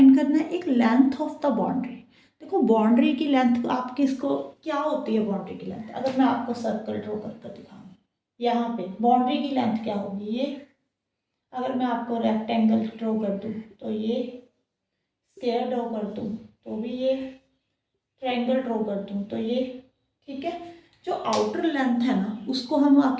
करना है, एक लेंथ ऑफ द बाउंड्री। देखो बाउंड्री की लेंथ आपकी इसको क्या होती है, बाउंड्री की लेंथ अगर मैं आपको सर्कल ड्रॉ कर दिखाऊँ यहाँ पे बाउंड्री की लेंथ क्या होगी ये। अगर मैं आपको रेक्टेंगल ड्रॉ कर दूँ तो ये, स्क्वायर ड्रॉ कर दूँ तो भी ये, ट्रायंगल ड्रॉ कर दूँ तो ये, ठीक है। जो आउटर लेंथ है ना उसको हम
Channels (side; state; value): both; identical; correlation 1.00